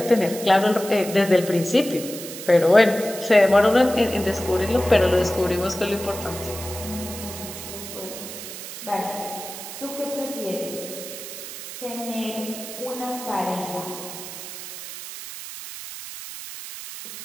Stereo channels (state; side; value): noise; right; hiss, 10 dB below the sound